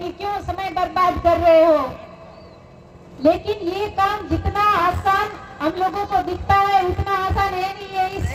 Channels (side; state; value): both; identical; correlation 1.00